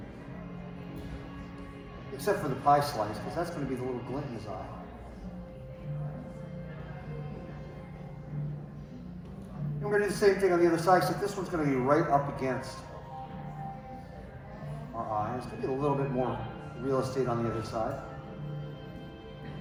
Except for the pie slice, because that's going to be the little glint in his eye. And we're going to do the same thing on the other side, except this one's going to be right up against our eye. It's going to be a little bit more real estate on the other side.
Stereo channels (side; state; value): both; identical; correlation 1.00